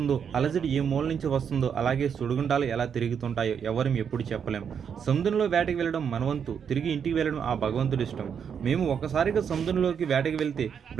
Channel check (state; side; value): quieter; left; 7.4 dB